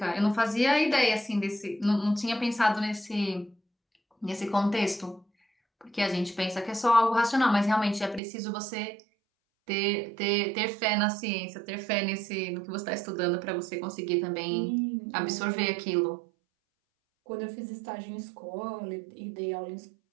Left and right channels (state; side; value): drops out; left; at 8.2 s